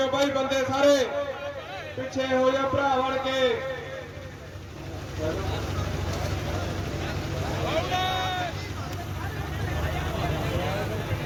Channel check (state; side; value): identical; both; correlation 1.00